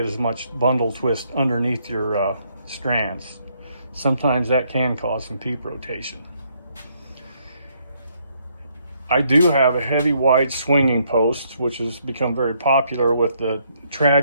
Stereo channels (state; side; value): inverted; both; correlation -0.71